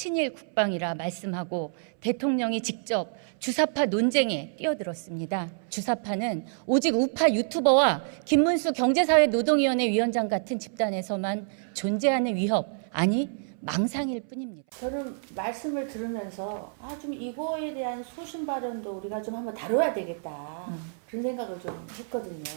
국방이라 말씀하고 대통령이 직접 주사파 논쟁에 뛰어들었습니다. 주사파는 오직 우파 유튜버와 김문수 경제사회노동위원회 위원장 같은 집단에서만 존재하는 위협, 아니 망상일 뿐입니다. 저는 말씀을 들으면서 좀 이거에 대한 소신 발언도 우리가 좀 한번 다뤄야 되겠다 그런 생각을 좀 했거든요.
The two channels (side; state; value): left; silent; 59 dB below the other